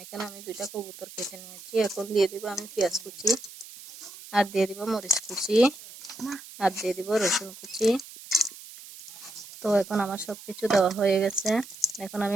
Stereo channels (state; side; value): noise; right; hiss, 16 dB below the sound